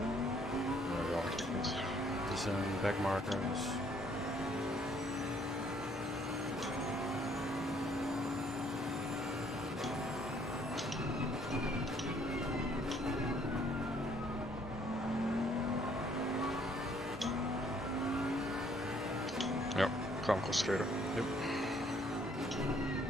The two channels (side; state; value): both; normal; correlation 0.64